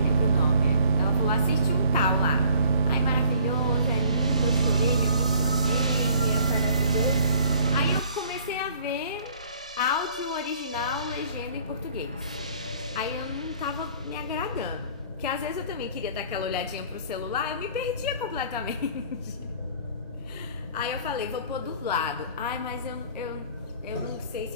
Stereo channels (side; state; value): both; inverted; correlation -0.55